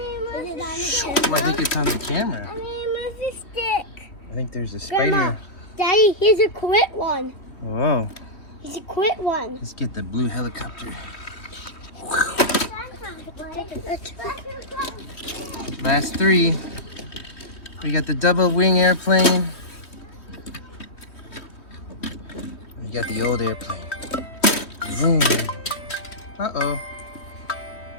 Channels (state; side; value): late; right; 3.1 ms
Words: it on the Oh, I think it's on the camera. where's the stick? I think there's a spider. Grandma, Daddy, here's a quit one. Whoa. He's a quit one. Let's get the blue helicopter. Last three. We got the double wing airplane. We got the old airplane. Vroom. Uh-oh.